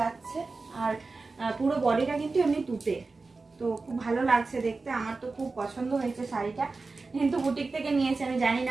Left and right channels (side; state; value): left; quieter; 3.9 dB